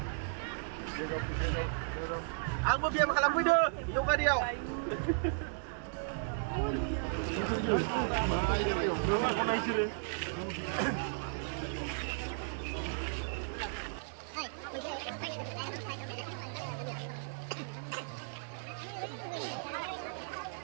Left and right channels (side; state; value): left; silent; 54 dB below the other